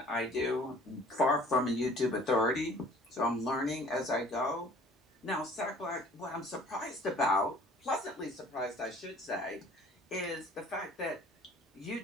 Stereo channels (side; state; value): both; normal; correlation 0.51